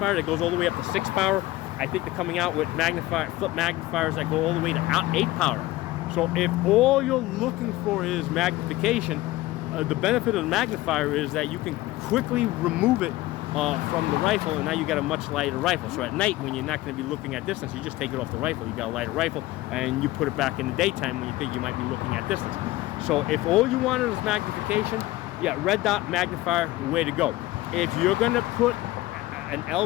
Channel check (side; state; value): right; quieter; 17.9 dB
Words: that goes all the way up to 6 power. I think they're coming out with flip magnifiers that go all the way to 8 power. So if all you're looking for is magnification, the benefit of the magnifier is that you can quickly remove it from the rifle, and now you got a much lighter rifle. So at night, when you're not going to be looking at distance, you just take it off the rifle. You got a lighter rifle, and you put it back in the daytime when you think you might be looking at distance. So if all you wanted was magnification, yeah, red dot magnifier, way to go. If you're going to put an